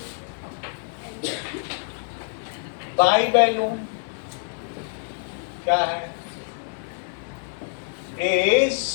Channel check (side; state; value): right; silent; digital silence